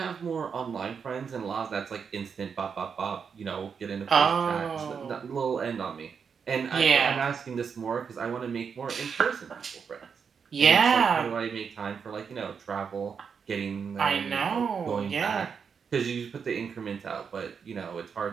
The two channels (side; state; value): left; quieter; 6.4 dB